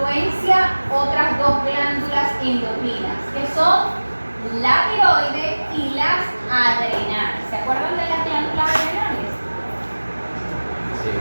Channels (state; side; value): inverted; both; correlation -1.00